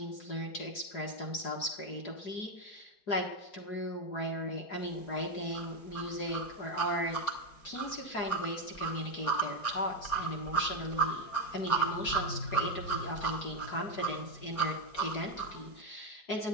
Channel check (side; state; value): right; late; 4.8 ms